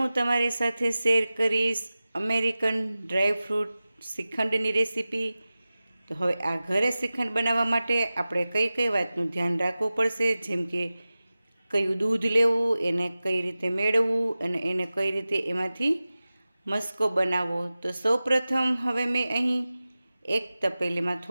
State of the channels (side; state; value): both; inverted; correlation -0.96